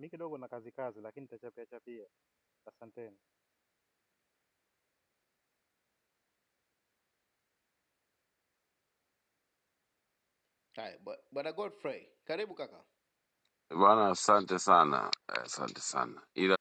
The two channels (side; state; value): both; identical; correlation 1.00